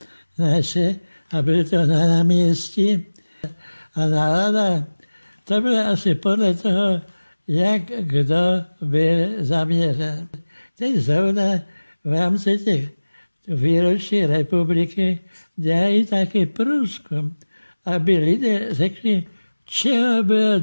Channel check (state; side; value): inverted; both; correlation -1.00